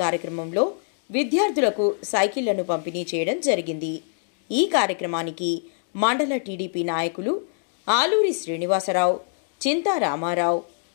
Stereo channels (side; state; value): right; silent; digital silence